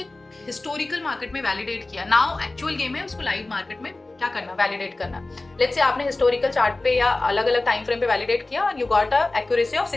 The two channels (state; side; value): quieter; right; 3.0 dB